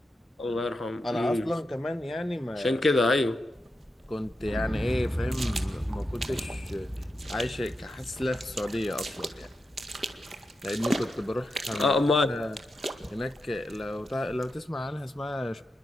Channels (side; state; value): both; normal; correlation 0.88